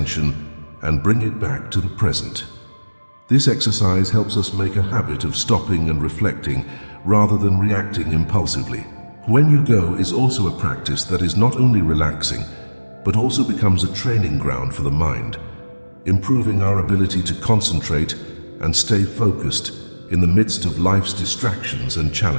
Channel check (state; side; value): inverted; both; correlation -1.00